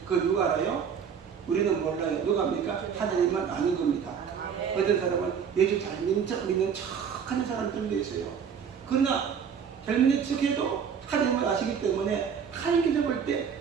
그거 누가 알아요? 우리는 몰라요. 누가 합니까? 하나님만 아는 겁니다. 어떤 사람은 예수 잘 믿는 척 하는 사람들도 있어요. 그러나 잘 믿는 척해도 하나님을 아시기 때문에 하나님께서 볼 때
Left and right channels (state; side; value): quieter; left; 7.1 dB